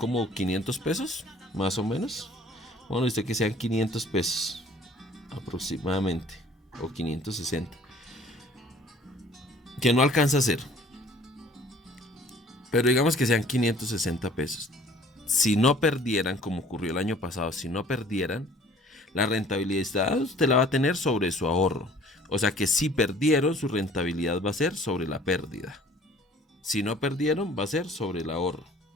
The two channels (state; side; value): normal; both; correlation 0.53